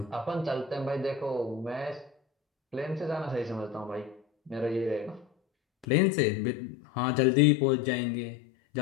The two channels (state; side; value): drops out; right; at 5.9 s